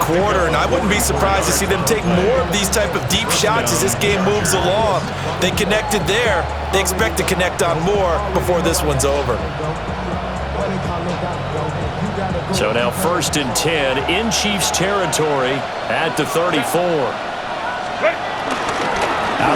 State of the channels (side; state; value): both; identical; correlation 1.00